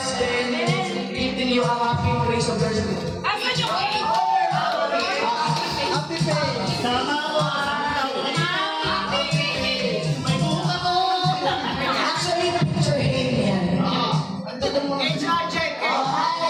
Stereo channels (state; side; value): identical; both; correlation 1.00